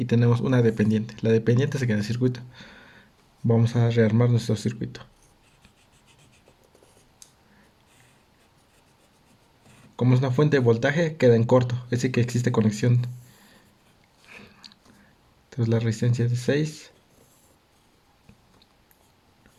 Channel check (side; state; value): both; identical; correlation 1.00